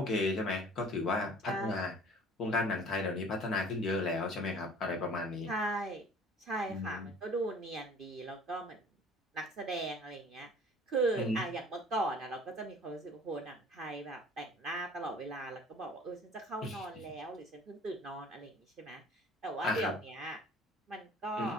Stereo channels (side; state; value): both; normal; correlation 0.49